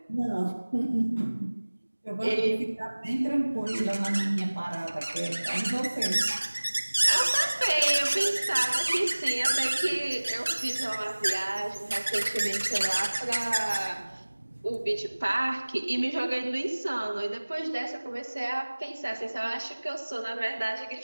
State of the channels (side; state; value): both; inverted; correlation -1.00